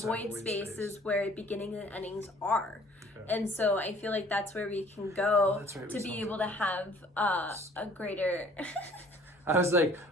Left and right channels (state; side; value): normal; both; correlation 0.54